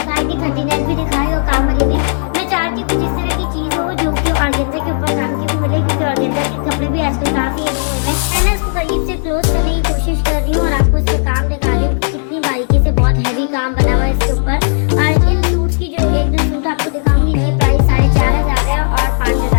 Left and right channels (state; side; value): silent; right; digital silence